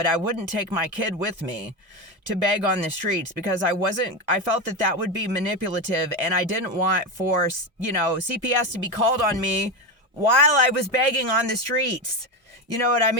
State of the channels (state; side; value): normal; both; correlation 0.17